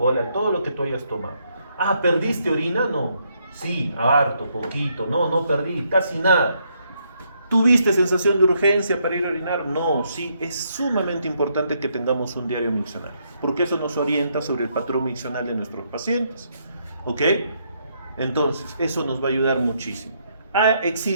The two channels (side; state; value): both; inverted; correlation -0.74